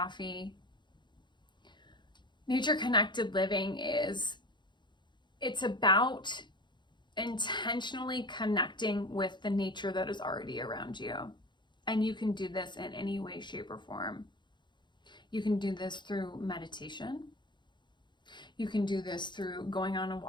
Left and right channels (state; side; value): late; right; 0.22 ms